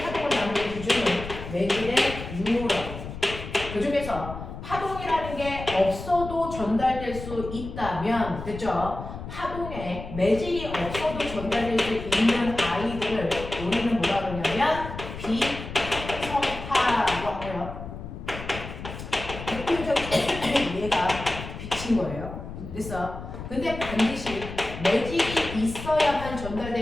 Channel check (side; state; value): left; noise; rumble, 10 dB below the sound